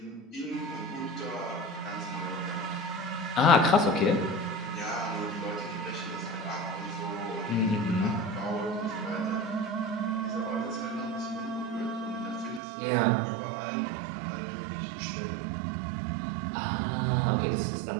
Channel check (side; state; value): left; drops out; at 12.6 s